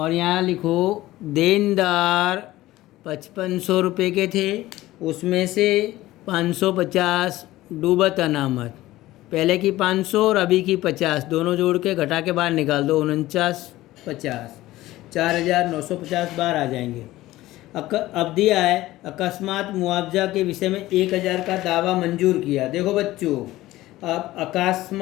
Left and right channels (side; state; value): right; quieter; 16.7 dB